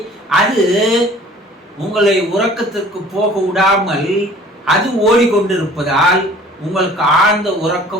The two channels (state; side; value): normal; both; correlation 0.49